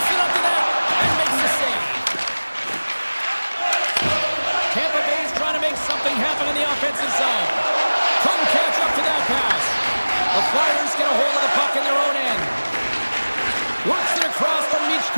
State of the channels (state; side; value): inverted; both; correlation -1.00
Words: it up to net and makes the save. Tampa Bay's trying to make something happen in the offensive zone. Couldn't catch up to that pass. The Flyers get a hold of the puck in their own end. Works it across from